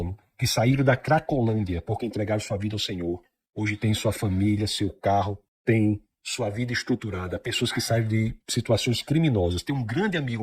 que saíram da Cracolândia porque entregaram sua vida ao Senhor. Hoje tem sua família, seu carro, tem sua vida estruturada, pessoas que saem de situações criminosas. Tem um grande amigo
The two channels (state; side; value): identical; both; correlation 1.00